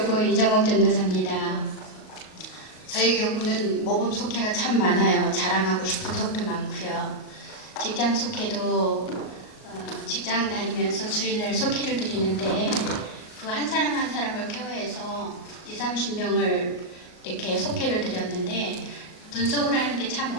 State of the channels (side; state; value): right; late; 38 ms